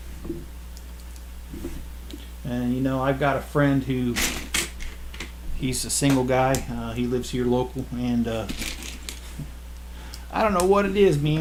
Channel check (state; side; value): identical; both; correlation 1.00